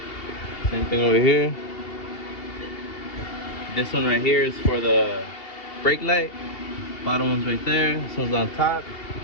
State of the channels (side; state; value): right; late; 2.8 ms